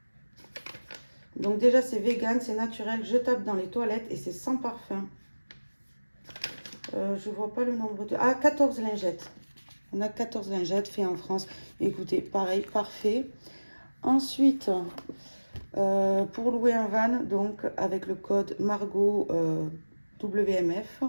Donc déjà c'est vegan, c'est naturel, jetable dans les toilettes et c'est sans parfum. Je vois pas le nombre de... Ah, 14 lingettes. On a 14 lingettes faites en France. Écoutez, pareil, parfait. Ensuite, pour louer un van, donc avec le code Margot WMF,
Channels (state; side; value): inverted; both; correlation -1.00